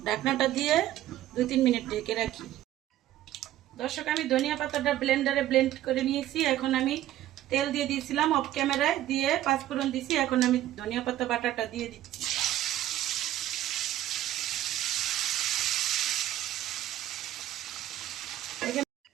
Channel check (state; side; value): quieter; left; 13.4 dB